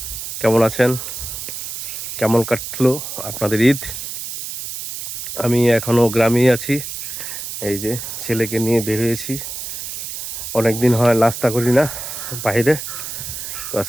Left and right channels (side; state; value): right; noise; hiss, 7 dB below the sound